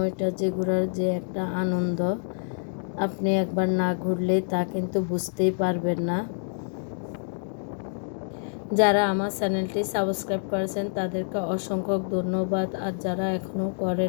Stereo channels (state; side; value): silent; right; digital silence